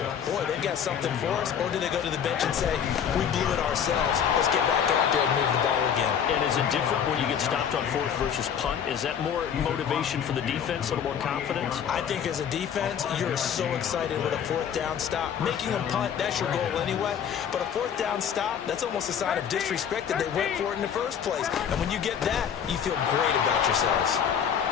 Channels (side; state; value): right; quieter; 8.2 dB